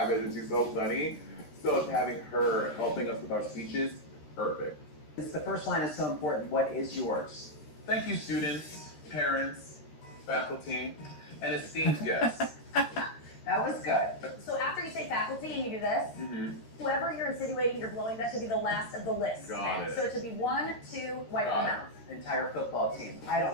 and she's so funny. So having her helping us with our speeches, perfect. The first line is so important. What is yours? Thank you, students, parents, faculty, and esteemed guests. That was good. So after you say faculty and you do this, whoever you're insinuating you're blowing, that should be the last of the list. Got it. So it should be 1, 2, wipe the Got mouth. Entire football team. I don't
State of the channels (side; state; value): right; late; 13 ms